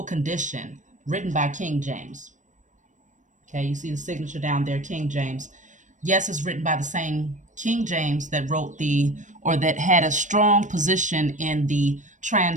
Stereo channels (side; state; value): left; late; 0.36 ms